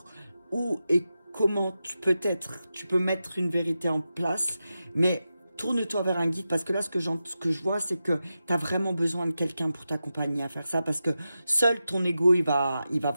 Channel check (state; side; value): inverted; both; correlation -0.91